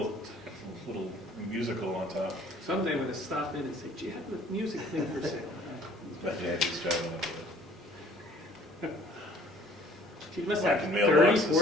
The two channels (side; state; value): both; normal; correlation 0.55